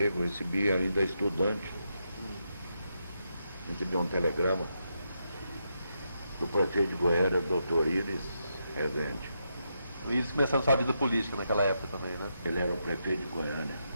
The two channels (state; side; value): inverted; both; correlation -0.82